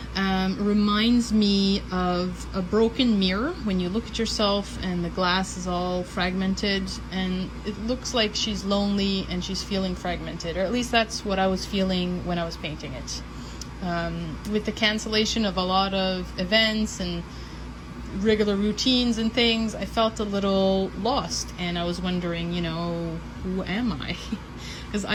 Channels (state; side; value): identical; both; correlation 1.00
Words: reminds me of a broken mirror when you look at yourself and the glass is all fragmented and it looks like she's lonely and she's feeling fragmented, or at least that's what I was feeling when I was painting it. With the cancellation of a lot of events and regular routines and things, I felt a little lost and I was wondering, who am I? Because